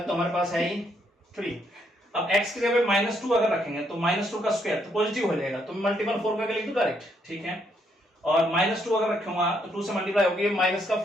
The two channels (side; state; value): both; normal; correlation 0.73